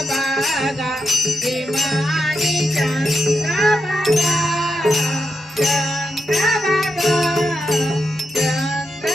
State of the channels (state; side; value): normal; both; correlation 0.85